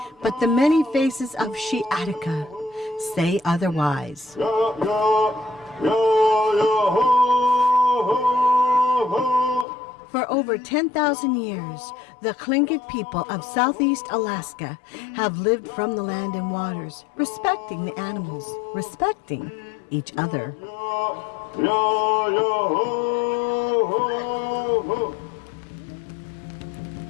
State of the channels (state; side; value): drops out; right; at 9.7 s